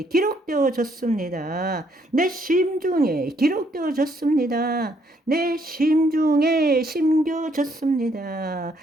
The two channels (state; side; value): normal; both; correlation 0.70